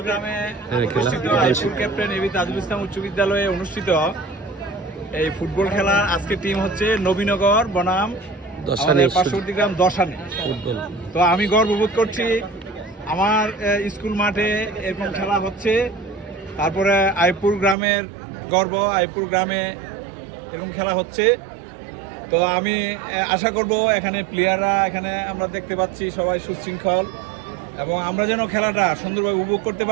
ক্যাপ্টেন এবি তাজুল ইসলাম উচ্চ বিদ্যালয়ে অনুষ্ঠিত এই ফুটবল খেলা আজকে টিম হচ্ছে নবীনগর বনাম পার্শ্ববর্তী গ্রাম দশানি ফুটবল। তো আমি গর্ববোধ করছি আমার স্কুল মাঠে এরকম খেলা হচ্ছে। তারপরে আইপুর গ্রামের গর্ব, আইপুর গ্রামে এরকম খেলা হচ্ছে। তো আমি আশা করব এখানে প্লেয়াররা, এখানে আমরা দেখতে পাচ্ছি সবাই সুশৃঙ্খল এবং আমরা যেন খেলাটা সুন্দরভাবে উপভোগ করতে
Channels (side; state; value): left; drops out; at 17.8 s